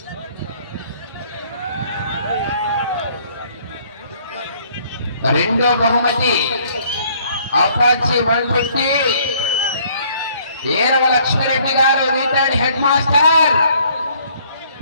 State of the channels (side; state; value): both; inverted; correlation -0.61